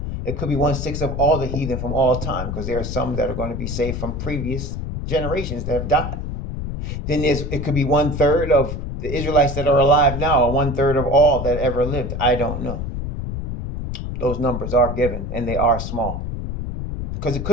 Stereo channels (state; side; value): noise; left; rumble, 5 dB below the sound